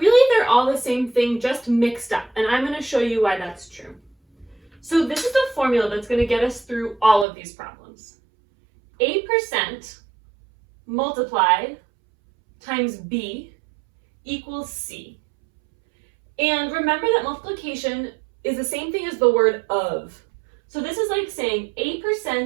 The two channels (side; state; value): left; drops out; at 7.2 s